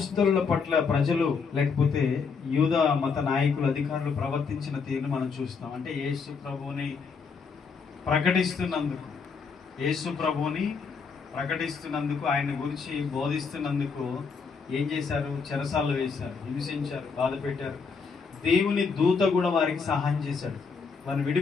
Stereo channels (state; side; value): quieter; right; 5.4 dB